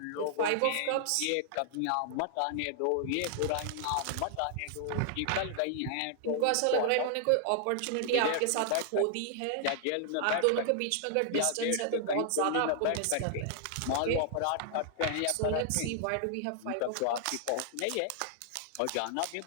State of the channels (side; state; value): both; different; correlation -0.01